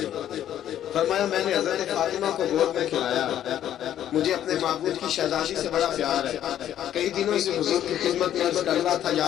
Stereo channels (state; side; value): quieter; right; 11.1 dB